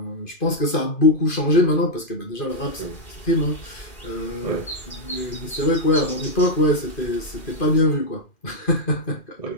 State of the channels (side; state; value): right; late; 2.5 ms